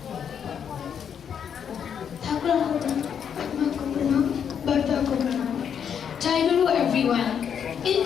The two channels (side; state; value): right; quieter; 7.9 dB